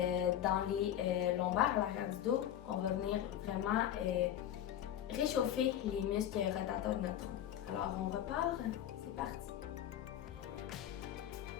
dans les lombaires, à l'arrière du dos, on va venir vraiment réchauffer les muscles rotateurs de notre tronc. Alors, on repart. C'est parti.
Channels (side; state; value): right; quieter; 11.0 dB